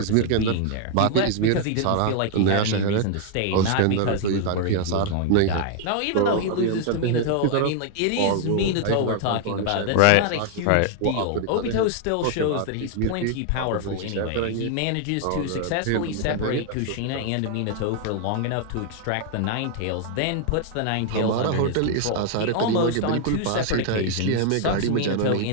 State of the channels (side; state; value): both; different; correlation 0.00